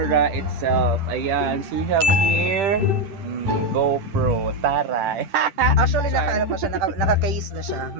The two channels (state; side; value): late; left; 10 ms